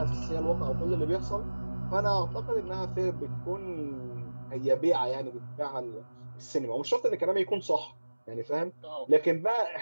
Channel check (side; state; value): both; inverted; correlation -1.00